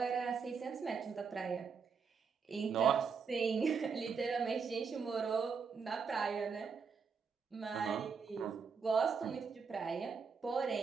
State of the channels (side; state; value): left; quieter; 5.7 dB